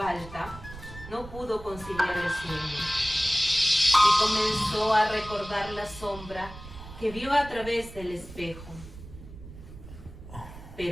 no pudo conciliar el sueño y comenzó a recordar la sombra que vio a través del espejo.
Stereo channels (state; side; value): noise; right; rumble, 15 dB below the sound